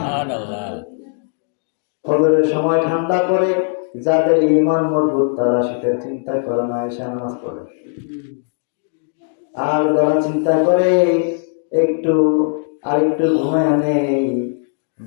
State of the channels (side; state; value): right; silent; digital silence